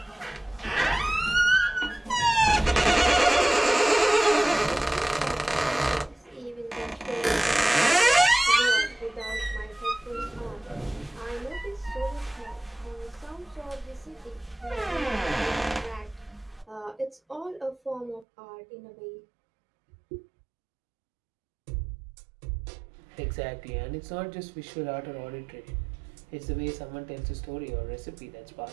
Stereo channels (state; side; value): drops out; left; at 18.2 s